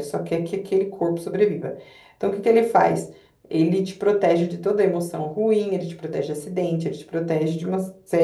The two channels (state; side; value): identical; both; correlation 1.00